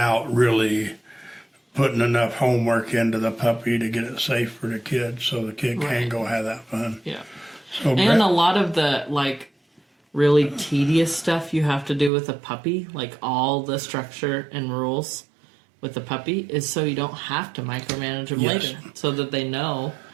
really putting enough homework into the puppy to get it safe for the kid so the kid can go have that fun. Yeah. So and a lot of the, really tedious stuff you have to do with a puppy, like all the structure and rules with the puppy, is so you don't have to micromanage them later, so that they know.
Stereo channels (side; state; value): left; drops out; at 12.1 s